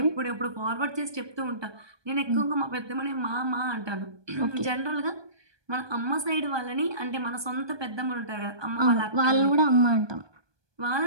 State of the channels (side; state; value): left; late; 1.2 ms